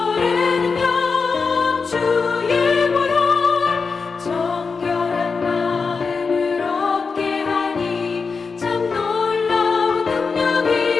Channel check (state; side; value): quieter; right; 4.9 dB